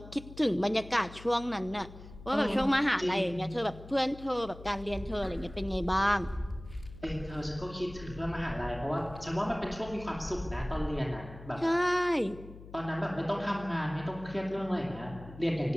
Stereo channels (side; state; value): left; noise; hum, 16 dB below the sound